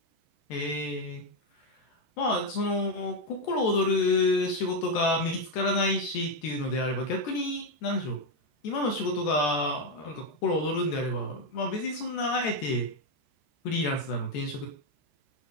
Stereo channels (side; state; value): right; late; 14 ms